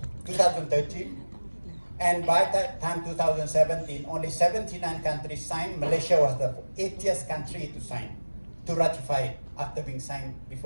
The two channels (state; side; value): inverted; both; correlation -1.00